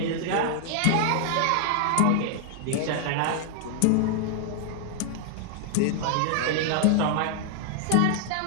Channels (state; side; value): different; both; correlation 0.00